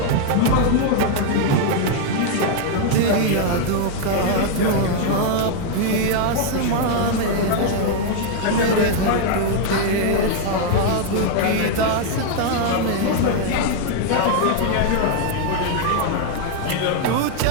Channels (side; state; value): both; different; correlation 0.00